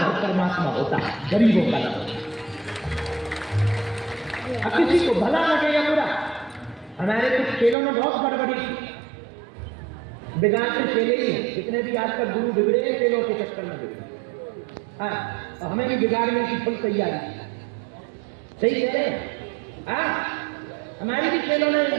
परमात्मा होता, गरीबों का नहीं होता। अब किसी को भला लगे या बुरा, हमारे कुछ खेलों में बहुत गड़बड़ी थी, बिगाड़ते खेले ही हैं। जितने भी आजकल गुरु बिगड़े हैं खेलों के चक्कर में बिगड़े। हाँ, और हमें भी बिगाड़ने की फुल तैयारी। सही कह रहे हैं। हाँ, हमारी भी खेलों ने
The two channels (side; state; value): left; drops out; at 7.8 s